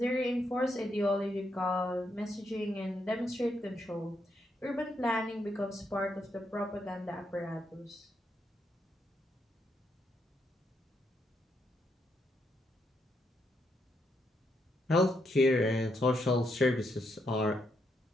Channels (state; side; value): normal; both; correlation 0.79